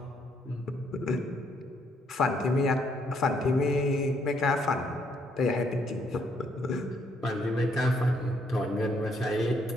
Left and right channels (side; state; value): both; normal; correlation 0.71